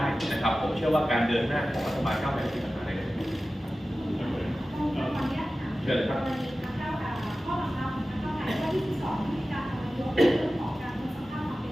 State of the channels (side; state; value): both; normal; correlation 0.95